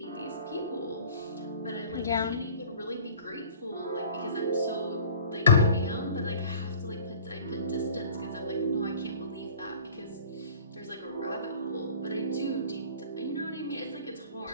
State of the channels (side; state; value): both; inverted; correlation -0.45